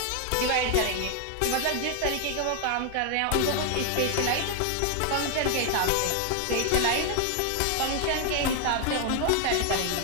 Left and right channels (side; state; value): both; different; correlation 0.01